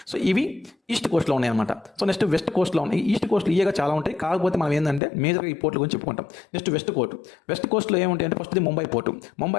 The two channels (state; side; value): drops out; right; at 5.0 s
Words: ఇవి ఈస్ట్ కోస్ట్లో ఉన్నాయి అనమాట. నెక్స్ట్ వెస్ట్ కోస్ట్లో ఉన్నాయి. ఈస్ట్ కోస్ట్లో ఈగా చాలా ఉంటాయి, కాకపోతే మనం ఏంటంటే మేజర్గా ఈ పోర్ట్ల గురించి చెప్పుకుంటాం. నెక్స్ట్ వెస్ట్ కోస్ట్లో ఏముంటాయి అంటే first Mumbai port.